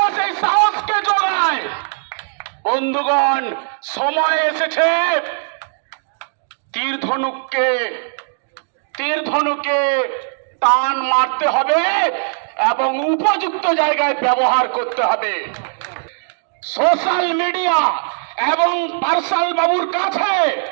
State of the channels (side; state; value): left; silent; digital silence